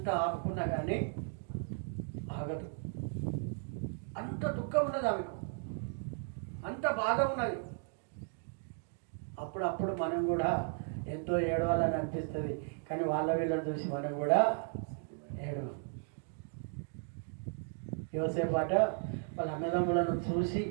ఆపుకున్నా కానీ ఆగదు. అంత దుఃఖం ఉన్నది ఆమెకు, అంత బాధ ఉన్నది. అప్పుడప్పుడు మనం కూడా ఎంతో ఏడవాలని అనిపిస్తుంది, కానీ వాళ్ళ వీళ్ళని చూసి మనం కూడా ఏడవం. యోసేపాట వాళ్ళ అన్నదమ్ములను చూసి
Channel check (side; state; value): left; silent; 54 dB below the other